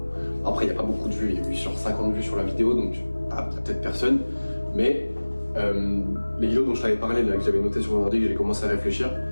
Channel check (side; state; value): both; inverted; correlation -1.00